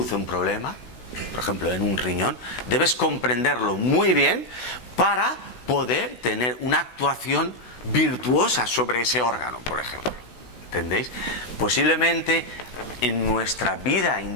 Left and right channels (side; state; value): right; late; 16 ms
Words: un problema. Por ejemplo, en un riñón, debes comprenderlo muy bien para poder tener una actuación virtuosa sobre ese órgano, por ejemplo. ¿Entendéis? Posiblemente en nuestra vida